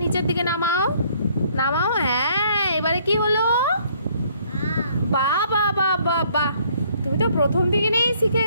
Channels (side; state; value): both; inverted; correlation -0.63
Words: নিচের দিকে নামাও, নামাও। হ্যাঁ, এবারে কি হলো? বাবা বাবা বাহ, তুমি তো প্রথম দিকে নেই শিখে